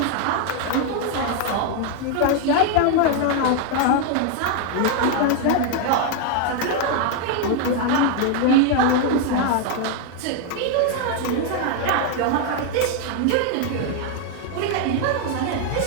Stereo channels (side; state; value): both; different; correlation 0.01